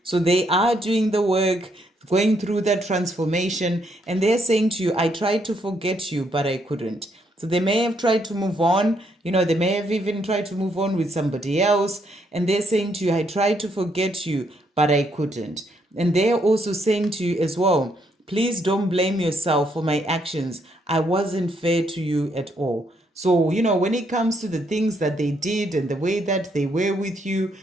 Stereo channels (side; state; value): both; normal; correlation 0.73